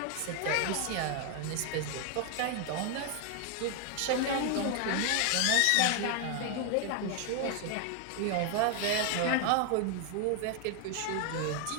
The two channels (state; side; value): different; both; correlation 0.00